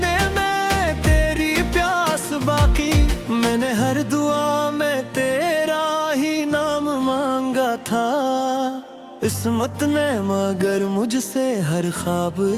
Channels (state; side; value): identical; both; correlation 1.00